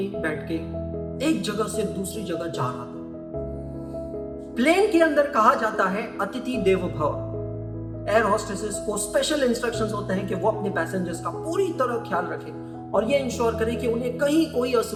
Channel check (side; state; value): both; identical; correlation 1.00